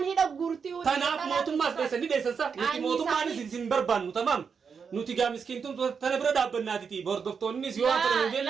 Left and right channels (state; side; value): quieter; left; 6.1 dB